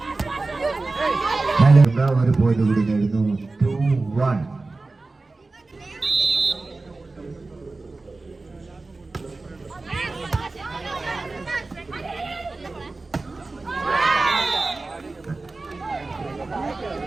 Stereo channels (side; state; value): left; quieter; 3.5 dB